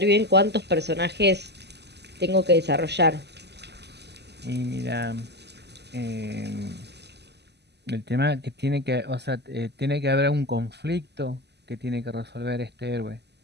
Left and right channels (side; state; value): left; late; 0.49 ms